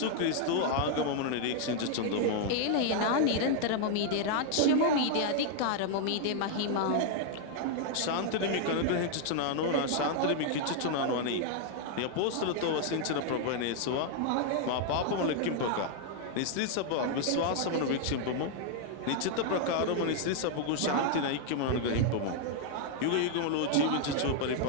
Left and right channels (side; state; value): both; different; correlation 0.00